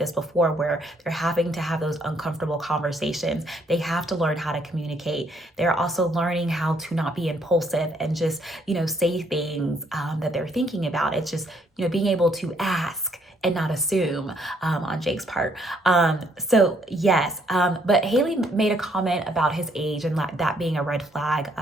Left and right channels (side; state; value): both; normal; correlation 0.68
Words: before, where they're having to have those uncomfortable conversations. They have to learn how to communicate. They're also learning how to not be impulsive and just, say things that they're thinking about. It's just, being able to ask and not assume on Jake's part. So yes, but Haley made a comment about his age and that being a red flag